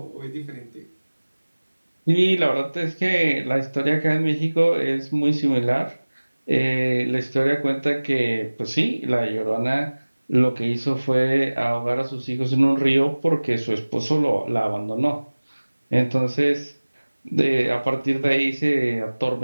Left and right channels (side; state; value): both; inverted; correlation -1.00